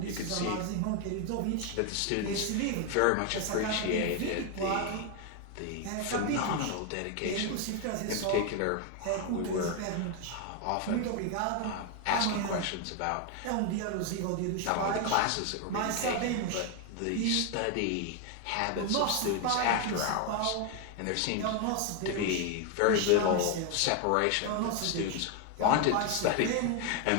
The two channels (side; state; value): both; different; correlation 0.01